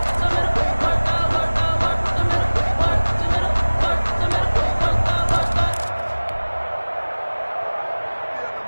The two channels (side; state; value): both; inverted; correlation -1.00